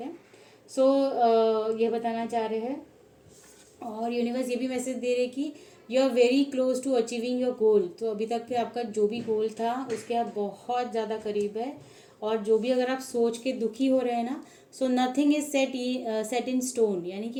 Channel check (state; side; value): identical; both; correlation 1.00